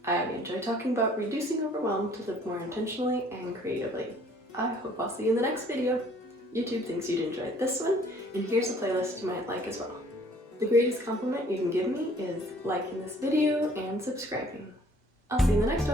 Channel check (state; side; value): normal; both; correlation 0.57